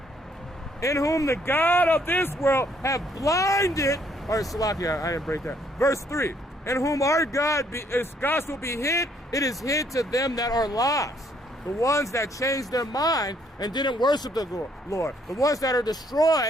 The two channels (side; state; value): both; normal; correlation 0.67